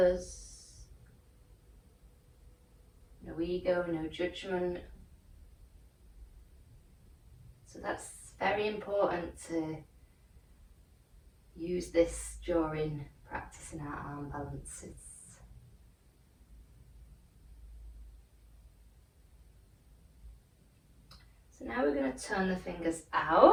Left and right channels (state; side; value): identical; both; correlation 1.00